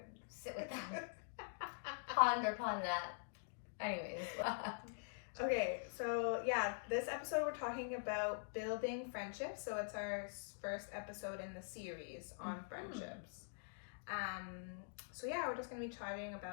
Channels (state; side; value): silent; right; digital silence